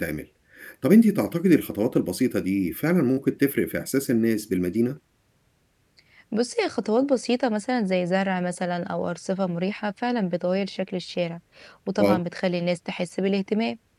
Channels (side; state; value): both; identical; correlation 1.00